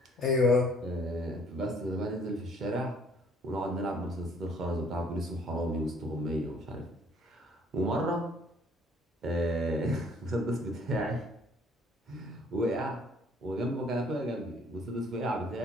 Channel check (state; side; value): normal; both; correlation 0.60